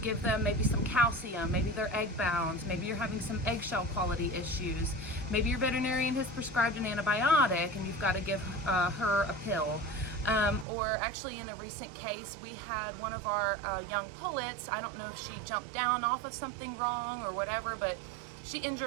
them maybe some calcium, maybe they're egg bound, maybe you're having some eggshell quality issues, maybe your veterinarian has prescribed an antibiotic and you've got to give her a pill. Or actually in a recent case, we had one of our young pullets. I don't know if she jumped down off of something wrong or whatever, but she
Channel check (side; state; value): left; drops out; at 10.7 s